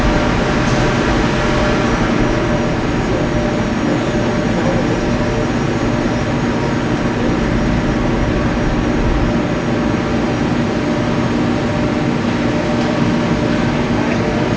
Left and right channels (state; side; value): identical; both; correlation 1.00